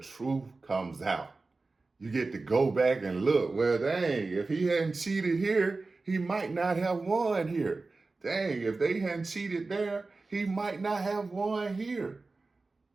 truth comes out. You get to go back and look. Well, dang, if he hadn't cheated here, he might not have won here. Dang, if they hadn't cheated there, he might not have won here.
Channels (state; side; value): quieter; left; 3.6 dB